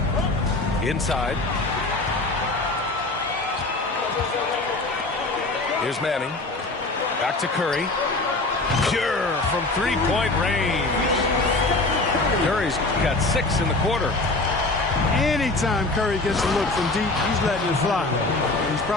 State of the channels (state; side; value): quieter; right; 3.1 dB